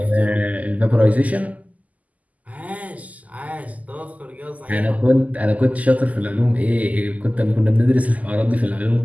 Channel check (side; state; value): left; late; 0.075 ms